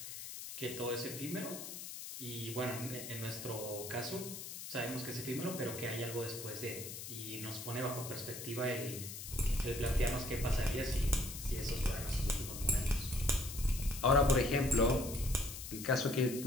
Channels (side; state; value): left; noise; hiss, 9 dB below the sound